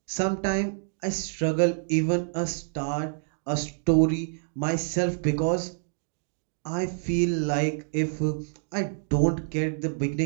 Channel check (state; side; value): silent; left; digital silence